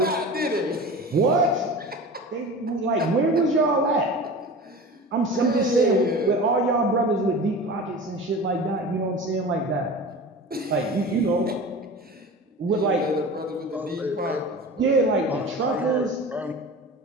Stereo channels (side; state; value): both; normal; correlation 0.34